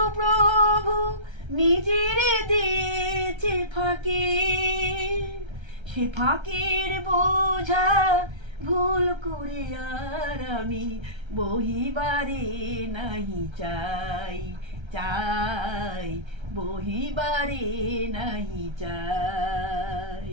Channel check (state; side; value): late; left; 1.3 ms